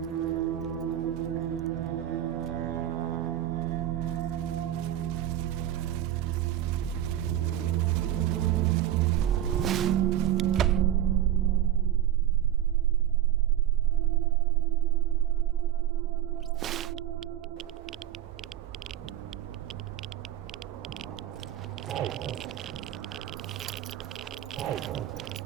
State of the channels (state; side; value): quieter; left; 12.0 dB